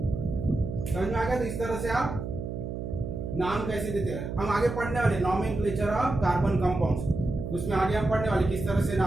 समझ में आ गया। तो इस तरह से आप नाम कैसे देते हैं, हम आगे पढ़ने वाले नॉमेनक्लेचर ऑफ कार्बन कंपाउंड्स, उसमें आगे हम पढ़ने वाले किस तरह से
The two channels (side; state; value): right; noise; hum, 6 dB below the sound